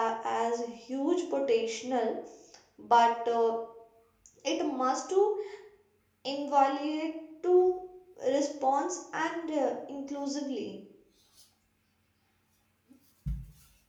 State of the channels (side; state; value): both; identical; correlation 1.00